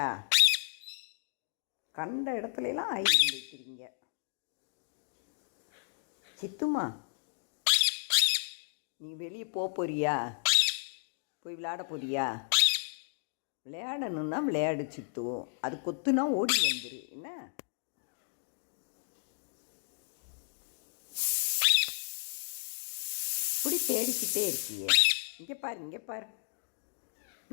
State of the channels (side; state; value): right; silent; digital silence